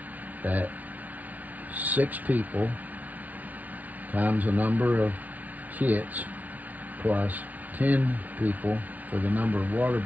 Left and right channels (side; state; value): left; late; 0.074 ms